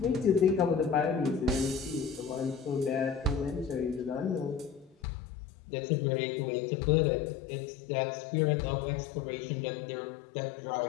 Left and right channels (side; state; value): right; drops out; at 5.0 s